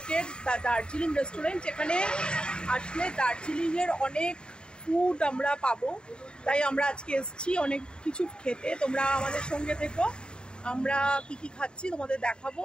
দার্জিলিং রেস্টুরেন্ট। এখানে আসলে দার্জিলিংয়ের অনেক ফুড আমরা পাবো, তাই আমরা আজকে এসেছি অনেক কিছু খেতে। তোমরা আমাদের সঙ্গে থেকো, আমরা কি কি খাচ্ছি তোমাদের দেখাবো।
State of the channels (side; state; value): right; late; 0.050 ms